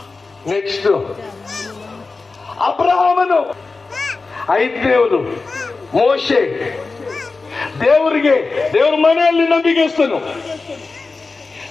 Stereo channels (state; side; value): quieter; right; 4.0 dB